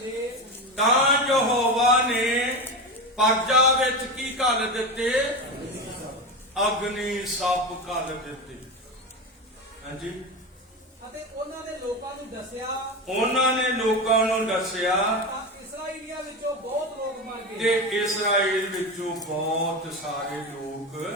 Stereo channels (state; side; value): normal; both; correlation 0.20